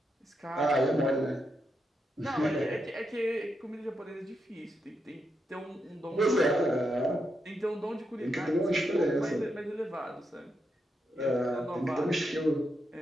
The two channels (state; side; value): normal; both; correlation 0.83